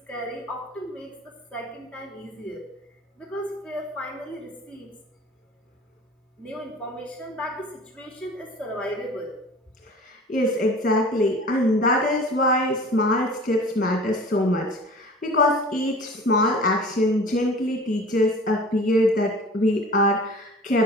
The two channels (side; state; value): both; normal; correlation 0.42